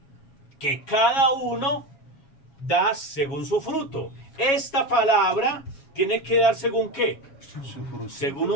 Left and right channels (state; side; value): late; right; 7.3 ms